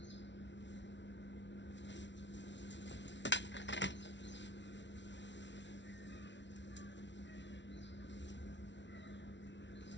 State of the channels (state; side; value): late; right; 0.52 ms